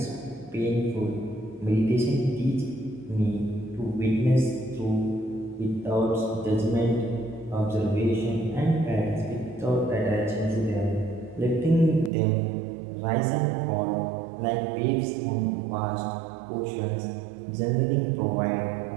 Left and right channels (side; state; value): left; drops out; at 12.1 s